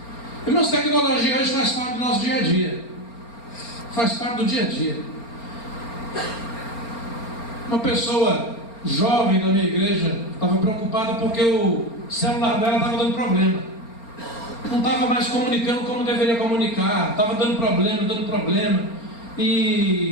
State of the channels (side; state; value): right; late; 4.3 ms